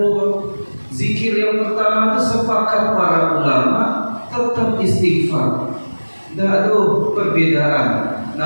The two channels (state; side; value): inverted; both; correlation -1.00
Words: zikir yang pertama itu sepakat para ulama tetap istighfar. Tidak ada perbedaan.